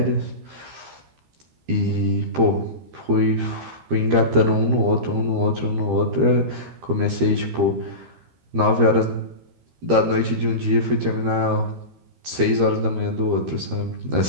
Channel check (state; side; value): late; left; 13 ms